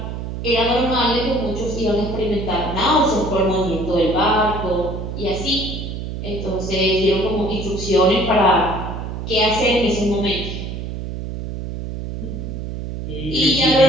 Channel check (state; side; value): noise; right; hum, 6 dB below the sound